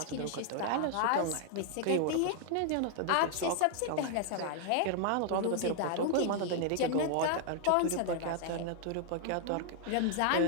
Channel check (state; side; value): different; both; correlation 0.00